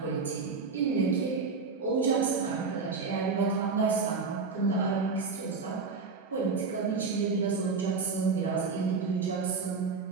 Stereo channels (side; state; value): left; quieter; 4.7 dB